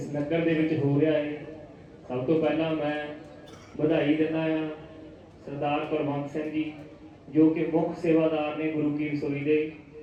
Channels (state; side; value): identical; both; correlation 1.00